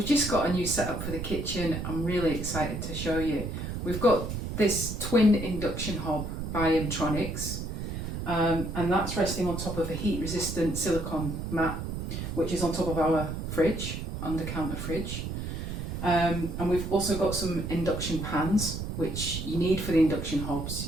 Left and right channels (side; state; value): right; noise; rumble, 5 dB below the sound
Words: just got a new setup for the kitchen. I'm really excited to show you. We've got this twin induction hob by Emtronics, and that's resting on top of a heat resistant silicone mat, which is on top of our fridge, under counter fridge. And we've also got some induction pans, which you need for the induction